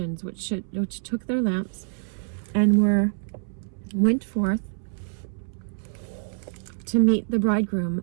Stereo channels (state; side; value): silent; left; 61 dB below the other